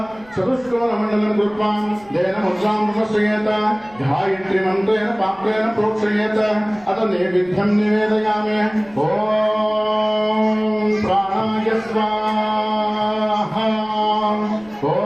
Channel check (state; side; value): noise; right; rumble, 26 dB below the sound